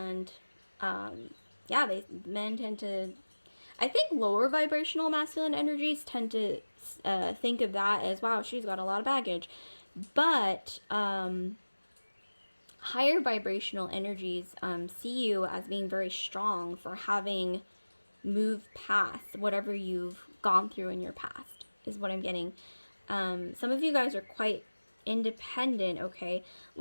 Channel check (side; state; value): both; inverted; correlation -1.00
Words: yeah, men tend to, I think lower vibrational masculine energies tend to think of that as, wow, she's got a lot of baggage. But higher vibrational energies see you as being very strong for having moved past whatever you've gone through in your past, is what I'm getting. Some of you guys are quite independent, okay?